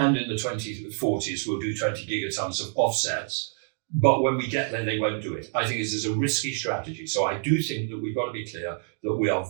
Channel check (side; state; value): left; silent; 60 dB below the other